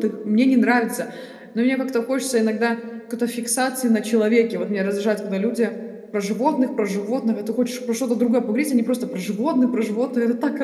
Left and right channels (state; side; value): identical; both; correlation 1.00